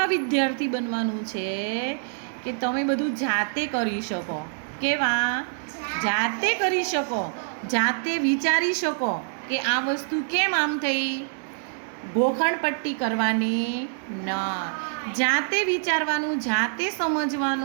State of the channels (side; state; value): left; silent; digital silence